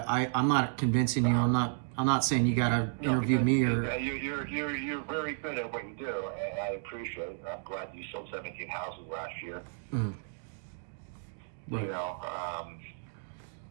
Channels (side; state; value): left; silent; digital silence